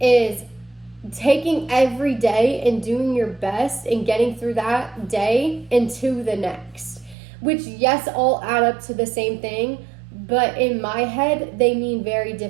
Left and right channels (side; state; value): left; drops out; at 7.2 s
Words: taking every day and doing your best and getting through that day into the next. Which, yes, all add up to the same thing, but in my head, they mean very